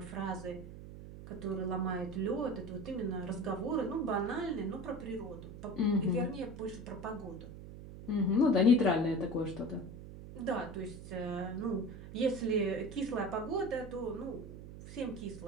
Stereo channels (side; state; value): right; noise; hum, 12 dB below the sound